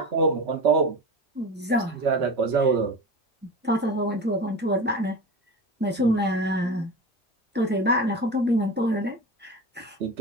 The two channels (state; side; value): normal; both; correlation 0.29